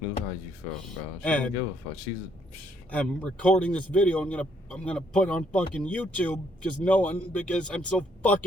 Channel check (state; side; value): normal; both; correlation 0.69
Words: knew how you felt, bro. She didn't give a fuck. I'm recording this video. I'm gonna put on fucking YouTube because I'm so